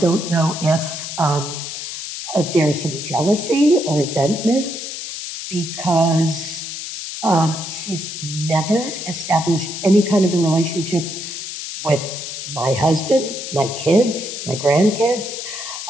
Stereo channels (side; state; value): left; noise; hiss, 7 dB below the sound